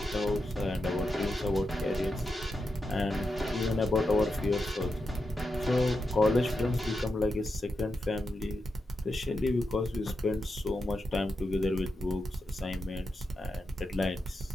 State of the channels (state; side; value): normal; both; correlation 0.87